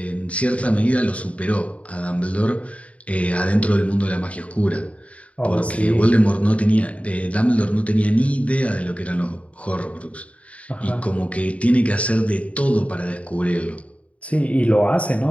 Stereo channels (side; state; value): right; late; 0.065 ms